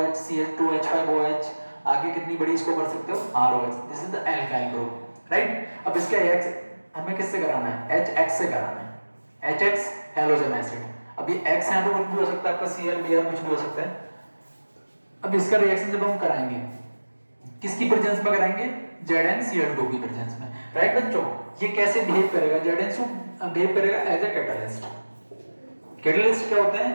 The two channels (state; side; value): inverted; both; correlation -1.00